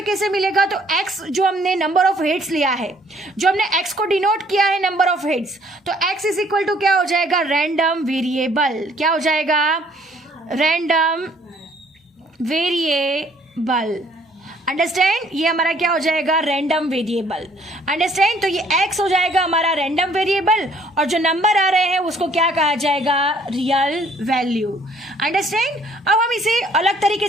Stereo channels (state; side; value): normal; both; correlation 0.61